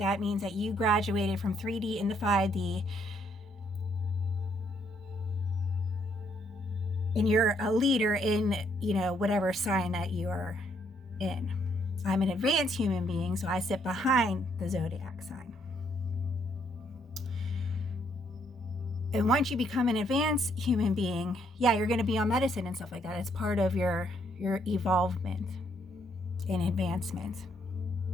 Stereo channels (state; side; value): normal; both; correlation 0.71